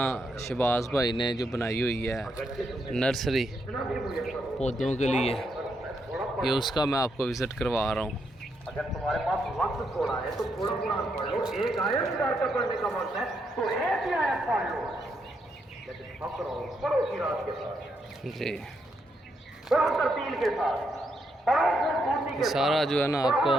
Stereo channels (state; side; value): normal; both; correlation 0.79